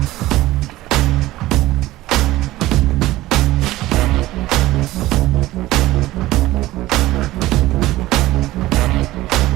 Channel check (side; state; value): left; quieter; 16.9 dB